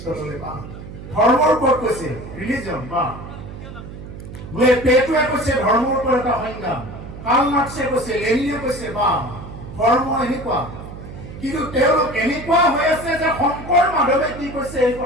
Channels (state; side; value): noise; right; hum, 12 dB below the sound